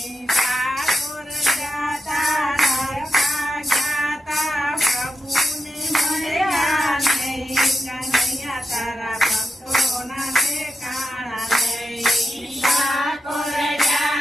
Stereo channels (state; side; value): normal; both; correlation 0.88